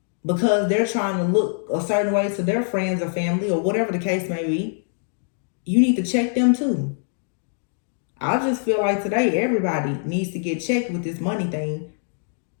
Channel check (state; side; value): silent; right; digital silence